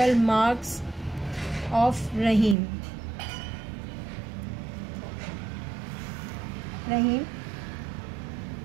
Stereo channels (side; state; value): left; drops out; at 2.6 s